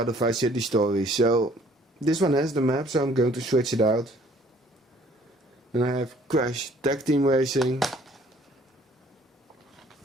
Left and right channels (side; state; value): both; normal; correlation 0.58